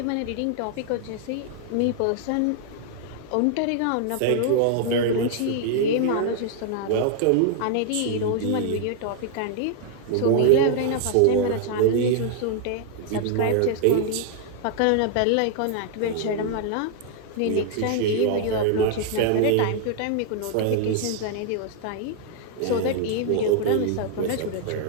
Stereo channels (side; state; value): both; different; correlation 0.00